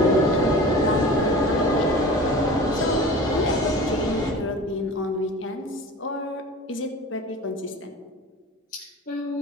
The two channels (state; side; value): normal; both; correlation 0.38